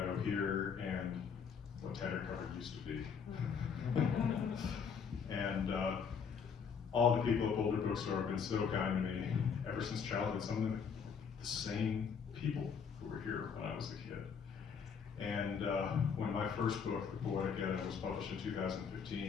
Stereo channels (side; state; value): right; quieter; 6.5 dB